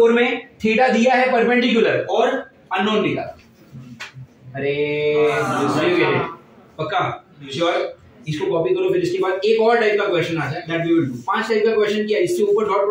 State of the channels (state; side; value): identical; both; correlation 1.00